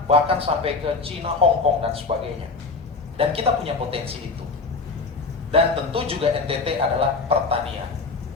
bahkan sampai ke Cina, Hong Kong, dan sebagainya. Dan kita punya potensi itu. Dan tentu juga NTT adalah pertanian.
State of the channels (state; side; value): quieter; right; 4.1 dB